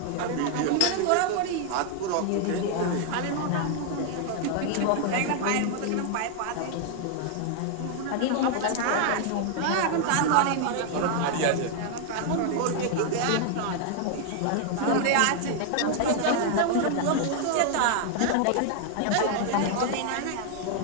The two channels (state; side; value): different; both; correlation 0.00